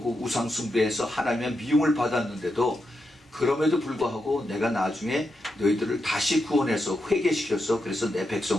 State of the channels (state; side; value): normal; both; correlation 0.86